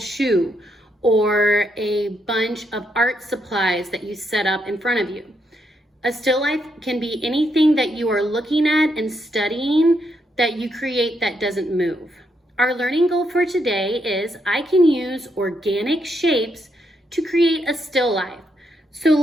or a bunch of art supplies that you set up in front of you. A still life can be anything that you are looking at and studying that you create that doesn't move. Our learning goal for today is I can use organic shapes to create a still life. So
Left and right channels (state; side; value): normal; both; correlation 0.78